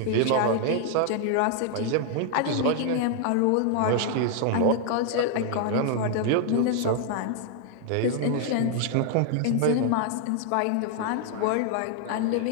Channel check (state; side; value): different; both; correlation 0.00